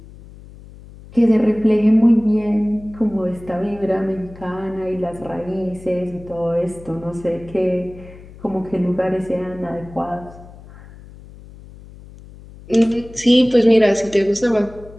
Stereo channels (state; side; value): noise; left; hum, 19 dB below the sound